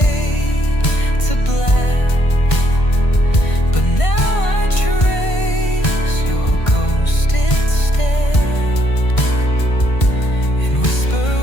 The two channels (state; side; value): late; right; 1.5 ms